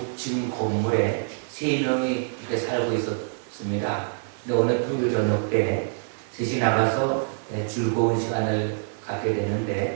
건물에 3명이 이렇게 살고 있었습니다. 근데 어느 토요일 저녁 때 셋이 나가서 즐거운 시간을 갖게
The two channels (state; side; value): silent; left; digital silence